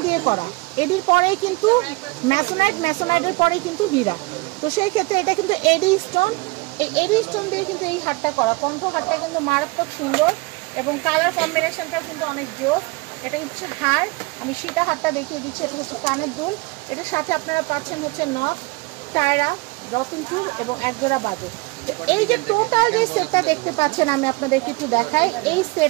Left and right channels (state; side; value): quieter; left; 26.1 dB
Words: দিয়ে করা, এডির পরেই কিন্তু ম্যাসোনাইট, ম্যাসোনাইটের পরেই কিন্তু হীরা। তো সেই ক্ষেত্রে এটা কিন্তু এডি স্টোন, এই এডি স্টোন দিয়ে কিন্তু এই হারটা করা। কণ্ঠ হারটা কিন্তু মারাত্মক সুন্দর এবং কালার কম্বিনেশনটাও কিন্তু অনেক জোস। এটা হচ্ছে হার, আমি সীতা হারটা দেখিয়ে দিচ্ছি। এটা হচ্ছে কানের দুল, এটার সাথে আপনারা পাচ্ছেন হচ্ছে নথ, টায়রা, রতনচুর এবং একজোড়া বাজু। এই যে টোটাল যে সেটটা দেখতে পাচ্ছেন, আমি আপনাদেরকে একটু দেখাই, এই